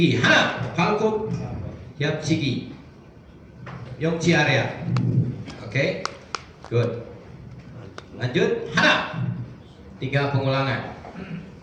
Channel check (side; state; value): both; identical; correlation 1.00